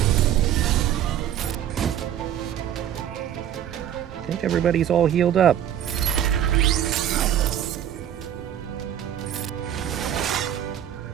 I think everybody's all healed up.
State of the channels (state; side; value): quieter; left; 10.5 dB